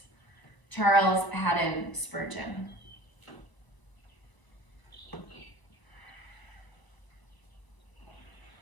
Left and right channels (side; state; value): right; late; 1.0 ms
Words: Charles Haddon Spurgeon.